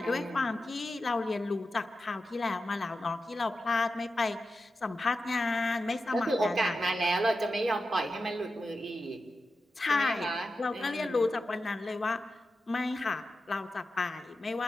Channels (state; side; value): normal; both; correlation 0.91